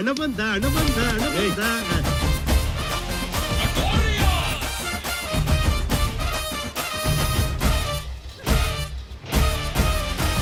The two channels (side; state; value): both; identical; correlation 1.00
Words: ಬಂದ ಹಣ ಬಂದ ಹಣ ಬಂದ.